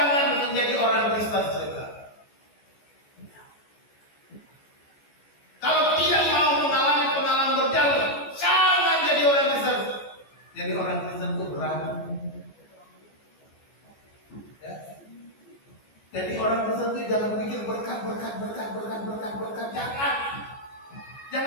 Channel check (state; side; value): late; right; 14 ms